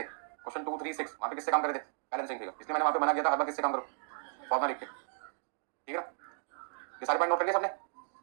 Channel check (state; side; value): silent; left; digital silence